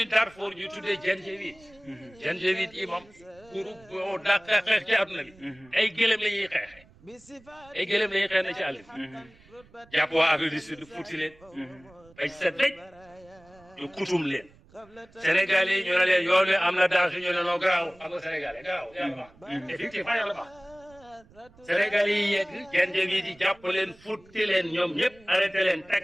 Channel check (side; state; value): right; noise; rumble, 27 dB below the sound